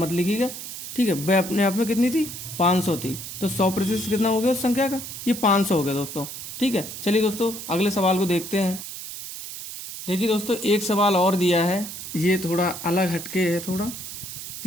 लिखिएगा, ठीक है। वह अपने आप में कितनी थी? 500 थी। तो 100% कितना हो गया उस संख्या का? ये 500 हो गया दोस्तों, ठीक है। चलिए दोस्तों अगले सवाल को देखते हैं। देखिए दोस्तों, एक सवाल और दिया है। ये थोड़ा अलग हटके है, थोड़ा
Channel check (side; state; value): right; noise; hiss, 9 dB below the sound